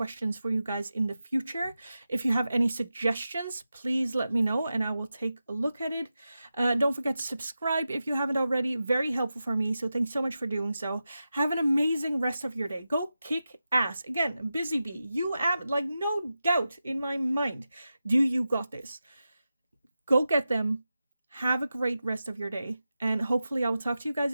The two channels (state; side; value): inverted; both; correlation -0.92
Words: for you guys in the future. If you have any suggestions, please let me know and I will take a look at it. Don't forget to subscribe if you haven't already. Very helpful for me, so thanks so much for doing so. Have an amazing rest of your day. Go kick ass. Again, busy bee, you have like no doubt in my mind, do you got this. Go get them. Have a great rest of your day, and hopefully I will talk to you guys